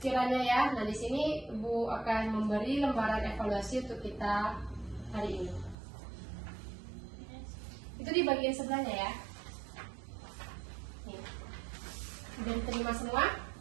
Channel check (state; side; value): drops out; left; at 5.8 s